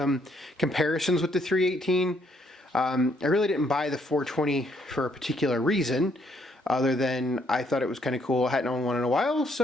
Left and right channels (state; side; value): normal; both; correlation 0.70